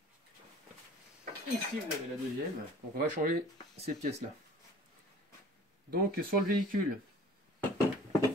Ici vous avez la deuxième, donc on va changer ces pièces là. Donc sur le véhicule,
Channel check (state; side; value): normal; both; correlation 0.47